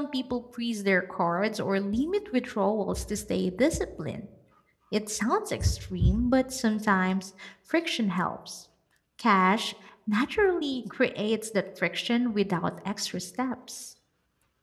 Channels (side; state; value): both; identical; correlation 1.00